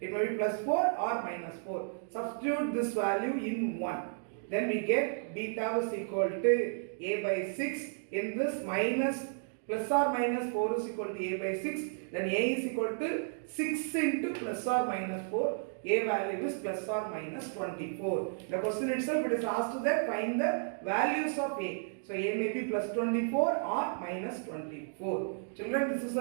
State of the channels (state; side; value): silent; left; digital silence